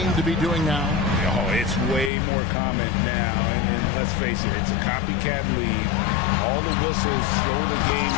to be doing now? Oh, it's way more common now. And let's face it, it's a copycat league. All the whistles slow the game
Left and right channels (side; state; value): right; drops out; at 2.1 s